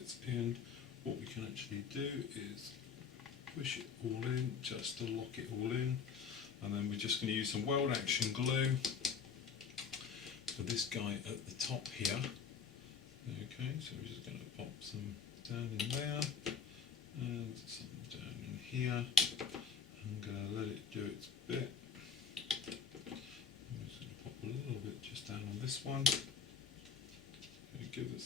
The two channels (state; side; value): quieter; right; 6.1 dB